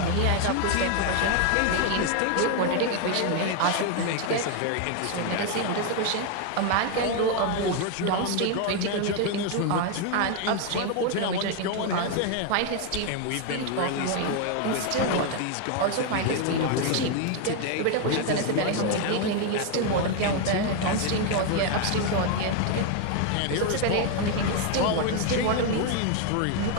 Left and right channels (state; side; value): different; both; correlation 0.01